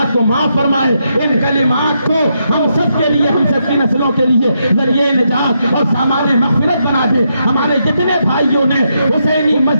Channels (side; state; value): both; inverted; correlation -0.81